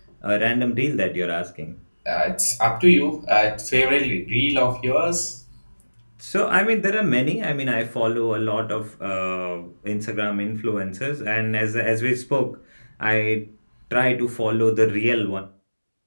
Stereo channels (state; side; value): inverted; both; correlation -1.00